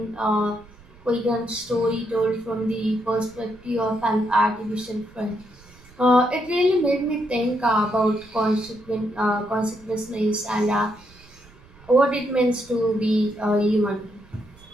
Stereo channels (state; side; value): noise; right; rumble, 25 dB below the sound